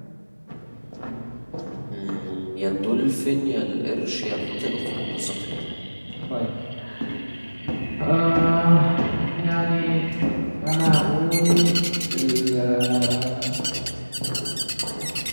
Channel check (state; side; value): inverted; both; correlation -1.00